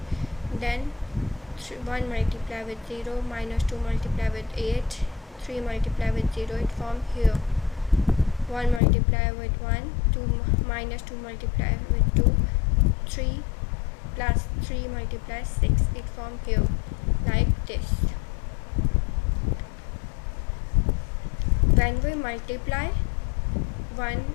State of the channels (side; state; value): right; drops out; at 8.8 s